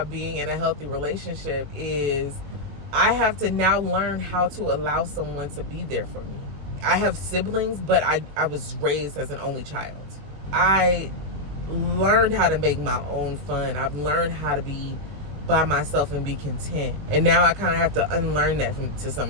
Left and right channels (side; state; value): left; late; 20 ms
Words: being in a healthy relationship is I have to now learn how to allow someone to be there for me. I have siblings, but I was raised as an only child. I learned how to make my own fun. I've learned how to be by myself and be content. And now I kind of have to unlearn that to